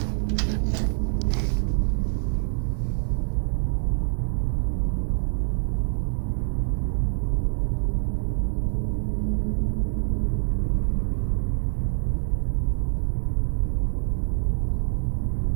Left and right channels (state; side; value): silent; left; 61 dB below the other